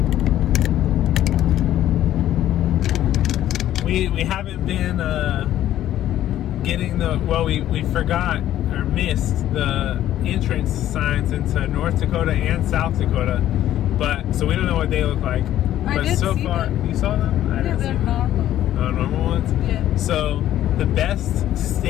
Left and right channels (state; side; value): quieter; right; 12.5 dB